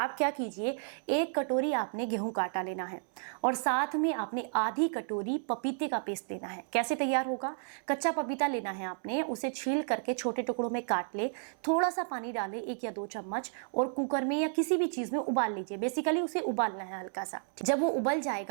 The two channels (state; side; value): silent; left; 56 dB below the other